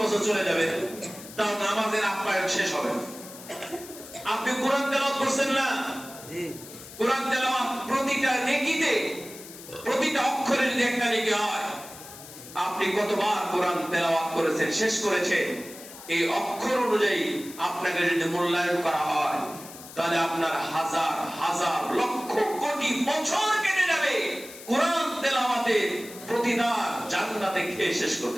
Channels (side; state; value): left; noise; hiss, 16 dB below the sound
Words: বছর চলে যাবে, তাও নামাজের আপ্যায়ন শেষ হবে না। আপনি কোরআন তেলাওয়াত করছেন না? জি। কোরআন তেলাওয়াত প্রতিটা নেকিতে, প্রতিটা অক্ষরে যদি একটা নেকি হয়, আপনি কতবার কোরআন তেলাওয়াত করেছেন, শেষ করেছেন, এই অক্ষর অনুযায়ী আপনাকে যদি মূল্যায়ন করা হয়, তাহলে আপনার হাজার হাজার লক্ষ কোটি বছর কেটে যাবে, কোরআন তেলাওয়াতে প্রতিদান জান্নাতে খেয়ে শেষ